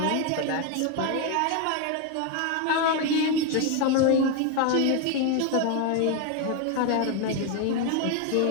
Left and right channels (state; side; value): different; both; correlation 0.01